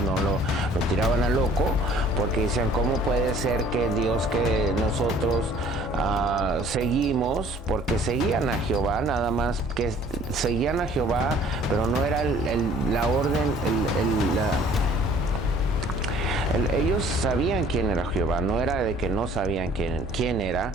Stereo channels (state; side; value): normal; both; correlation 0.54